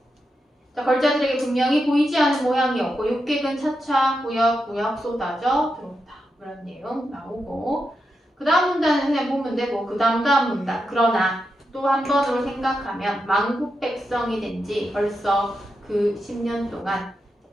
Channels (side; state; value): both; normal; correlation 0.86